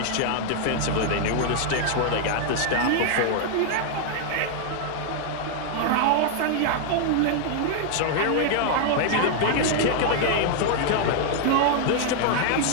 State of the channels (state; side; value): different; both; correlation 0.00